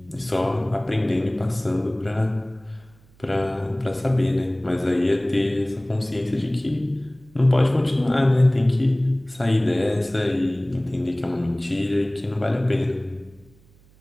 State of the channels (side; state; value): right; noise; hum, 29 dB below the sound